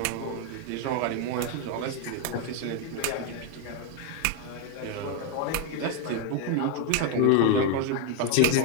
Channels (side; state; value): both; different; correlation 0.01